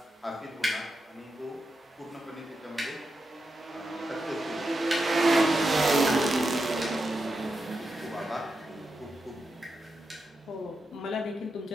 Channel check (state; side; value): normal; both; correlation 0.87